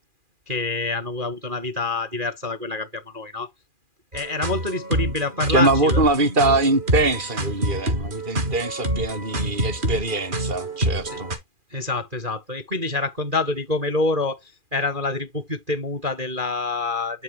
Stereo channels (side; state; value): left; late; 2.4 ms